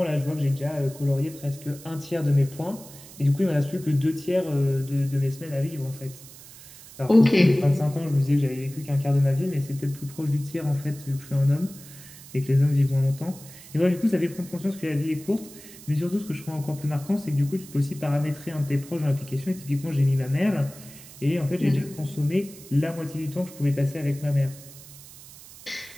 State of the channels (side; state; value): right; noise; hiss, 18 dB below the sound